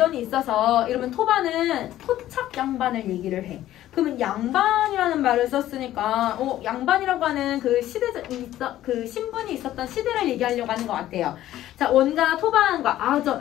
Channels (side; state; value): right; quieter; 13.5 dB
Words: 있어서 이러면 토반은 토착 양반을 얘기를 해. 그러면 양반이라는 말을 썼으니까 양반이라고 하는 그 그 신분이 있었던 시대를 얘기하려고 하는 것 같아요. 자, 원과 토반과